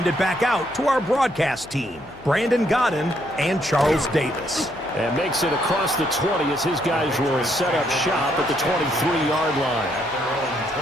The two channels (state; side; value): noise; left; hum, 22 dB below the sound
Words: it back out to our broadcast team, Brandon Godden and Charles Davis. And makes it across the 20 as his guys will set up shop at the 23-yard line.